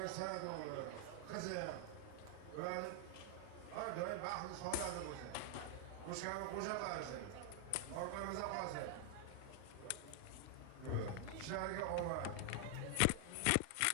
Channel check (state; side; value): different; both; correlation 0.00